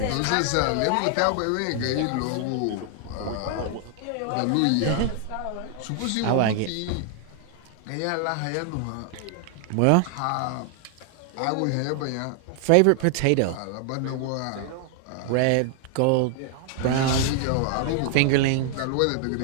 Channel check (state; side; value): different; both; correlation 0.00